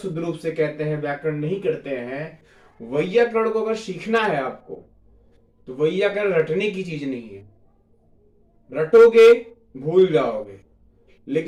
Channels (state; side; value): identical; both; correlation 1.00